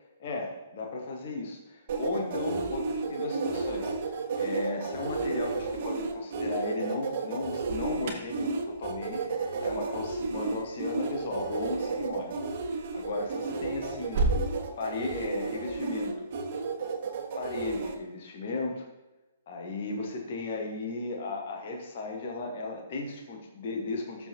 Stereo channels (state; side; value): inverted; both; correlation -0.57